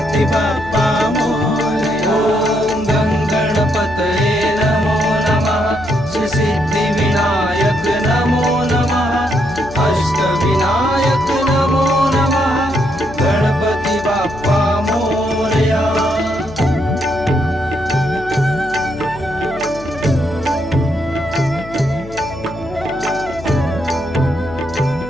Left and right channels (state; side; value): noise; left; hum, 15 dB below the sound